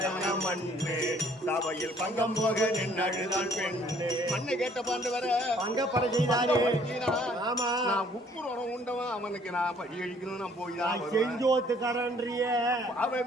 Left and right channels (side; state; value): both; normal; correlation 0.61